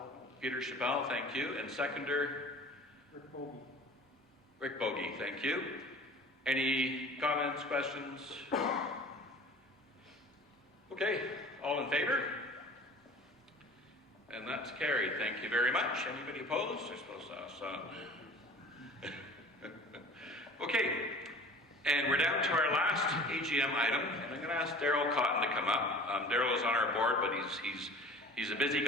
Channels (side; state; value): both; normal; correlation 0.43